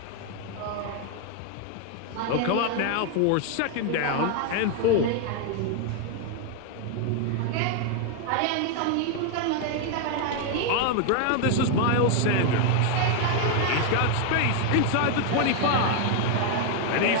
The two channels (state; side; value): different; both; correlation 0.01